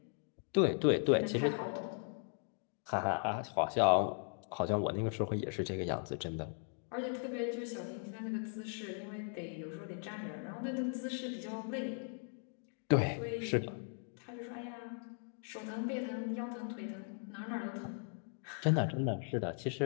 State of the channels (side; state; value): right; silent; 52 dB below the other